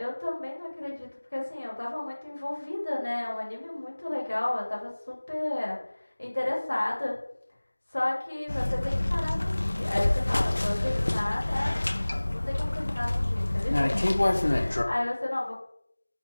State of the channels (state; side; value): inverted; both; correlation -1.00